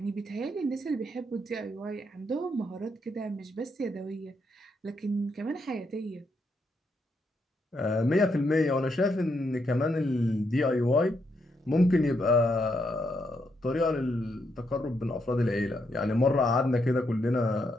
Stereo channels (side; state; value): both; normal; correlation 0.78